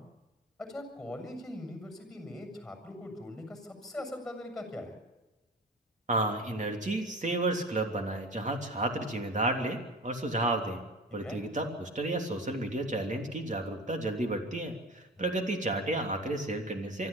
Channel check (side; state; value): both; normal; correlation 0.34